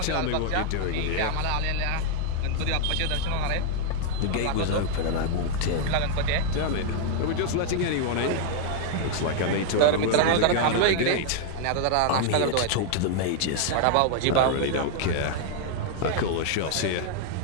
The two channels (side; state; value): both; different; correlation 0.00